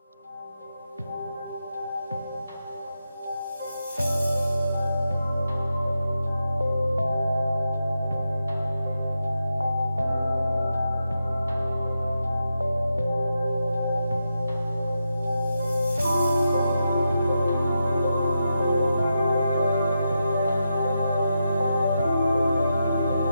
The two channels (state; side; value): inverted; both; correlation -0.86